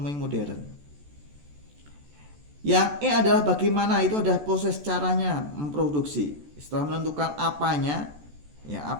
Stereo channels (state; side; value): late; left; 14 ms